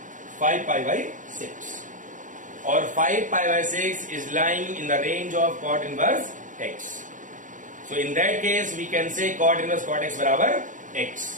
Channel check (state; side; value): late; left; 0.37 ms